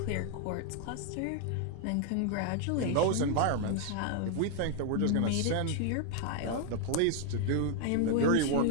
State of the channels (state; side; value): different; both; correlation 0.00